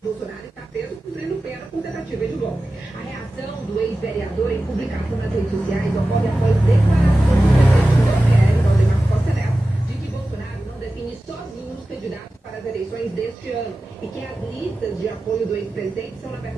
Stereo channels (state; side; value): normal; both; correlation 0.95